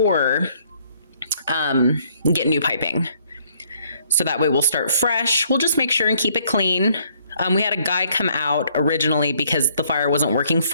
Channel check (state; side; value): inverted; both; correlation -0.66